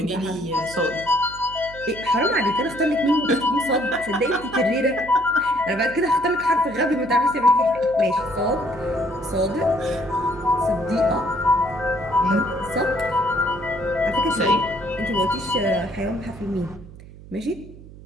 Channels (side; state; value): right; noise; hum, 18 dB below the sound